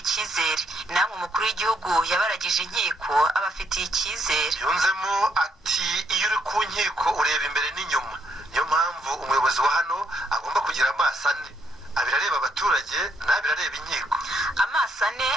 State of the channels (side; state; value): both; normal; correlation 0.73